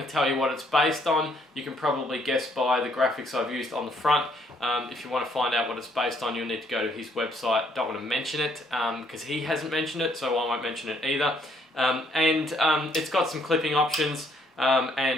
to tell you what it's based on. You can probably guess by the graphics I've used on the front. If you want to find out what it's based on, you'll need to go to his website. Don't want to mention it because he hasn't mentioned it, so I won't mention it either. It's got some clipping options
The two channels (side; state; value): both; normal; correlation 0.67